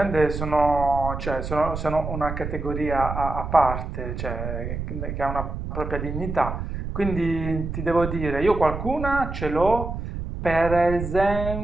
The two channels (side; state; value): right; noise; rumble, 6 dB below the sound